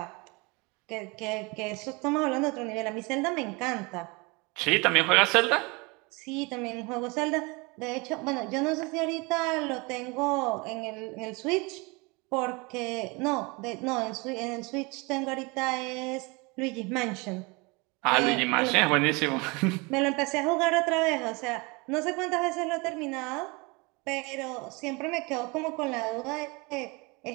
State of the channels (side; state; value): left; quieter; 27.3 dB